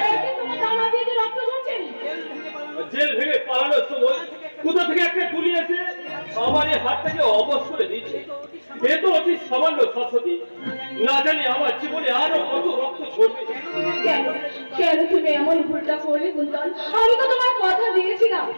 তোমার জানা দিয়ে যে রক্ত ঝরছে। জেল ভেঙে পালানোর সময় কোথা থেকে একটা গুলি এসে আমার এই হাতটাকে অবশ করে দিচ্ছে। এ তো অতি সামান্য শাশ্বতী, না জানি আমার জীবনে আরো কত রক্ত ঝরবে। কেন তুমি এমন ভুলটা করলে কুন্তল? আমি তো তোমার কথা দিয়েছিলাম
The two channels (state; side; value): inverted; both; correlation -1.00